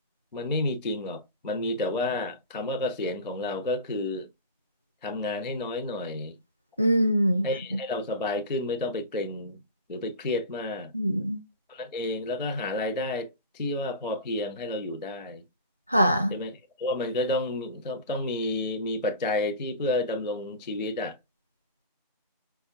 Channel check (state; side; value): inverted; both; correlation -0.34